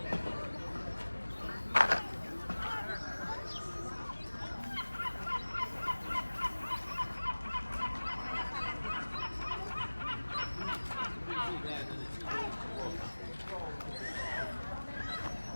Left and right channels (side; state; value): both; inverted; correlation -1.00